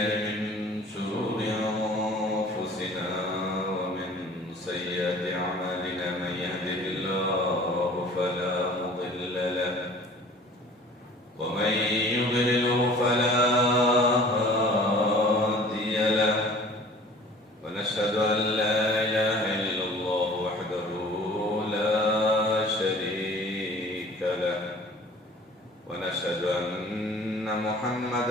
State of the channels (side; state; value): both; normal; correlation 0.47